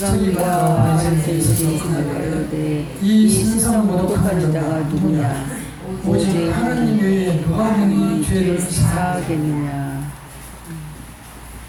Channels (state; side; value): identical; both; correlation 1.00